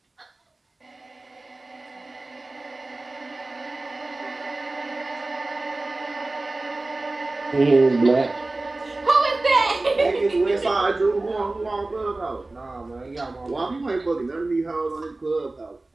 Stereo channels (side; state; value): left; quieter; 3.0 dB